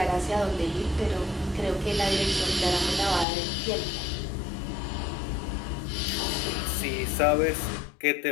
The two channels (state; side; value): drops out; right; at 3.2 s